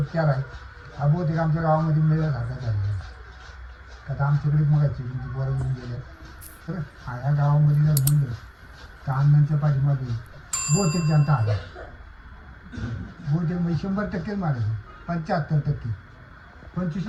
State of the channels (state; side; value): identical; both; correlation 1.00